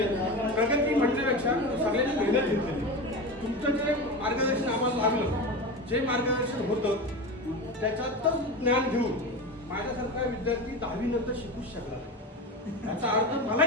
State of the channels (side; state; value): both; normal; correlation 0.25